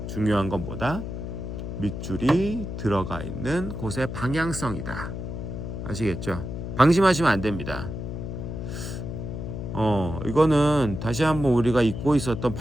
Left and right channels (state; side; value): noise; left; hum, 6 dB below the sound